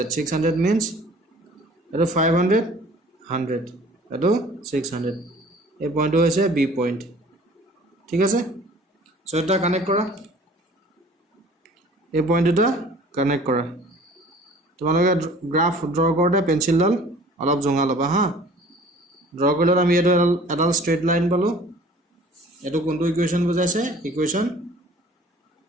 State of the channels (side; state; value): both; normal; correlation 0.49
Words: 600 means eto 500 100 eto 600 এই পইণ্টটো হৈছে b point ঠিক আছে so এটা কানেক্ট কৰা এই পইণ্ট দুটা কানেক্ট কৰা তোমালোকে গ্ৰাফ ড্ৰ কৰোতে পেন্সিলডাল অলপ জঙা লবা হা ড্ৰ কৰিলে আমি এডাল স্ট্ৰেট লাইন পালো এটো কোনটো ইকুৱেচন বুজাইছে ইকুৱেচন